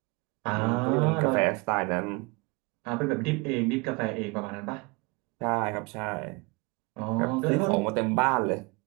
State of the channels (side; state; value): left; quieter; 28.2 dB